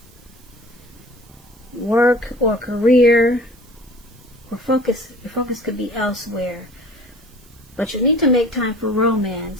Work or career, or your focus could be elsewhere. But you need to make time for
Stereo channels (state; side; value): noise; right; hiss, 28 dB below the sound